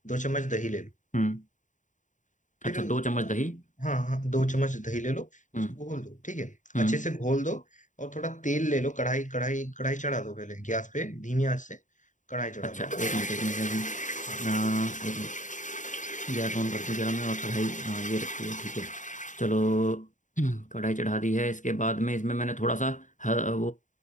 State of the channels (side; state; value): right; late; 0.36 ms